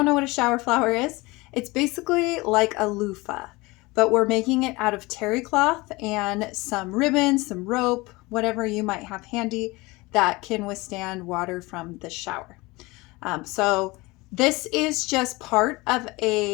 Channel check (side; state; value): right; quieter; 22.8 dB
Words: know what a shower flower is, it's basically like a loofah, but we're making it out of terry cloth and some ribbon, some rope, whatever you might have handy that can withstand water from the shower. So this is just part of